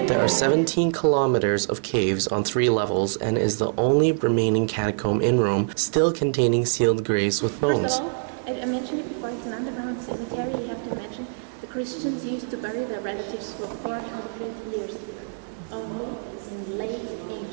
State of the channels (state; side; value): silent; left; digital silence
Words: There are 17 kilometers of caves on 3 levels and is the only remaining catacomb in Rome still containing sealed graves with bones. First of all, I mentioned it before, it's an underground cemetery. You have to imagine the Christians used to bury their relatives for 400 years here, only in late